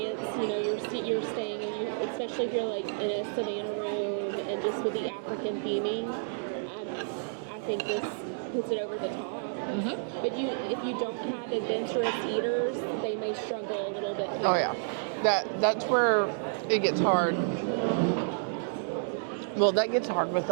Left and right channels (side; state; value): left; silent; digital silence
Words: you know, you're staying, and you, especially if you're like in a Savannah room and just with the African theming, I think this puts it over the top. Mm-hmm. But if you don't have adventurous eaters, they may struggle a little bit here. Oh, yeah. That's where it gets hard. Well, that gets hard with